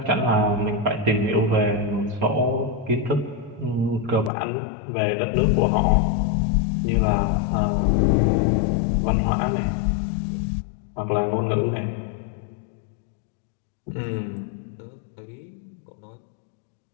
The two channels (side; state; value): right; drops out; at 4.3 s